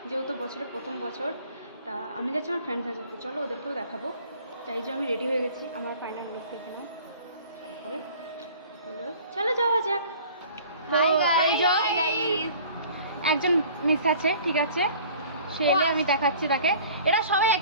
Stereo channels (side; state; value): both; inverted; correlation -0.48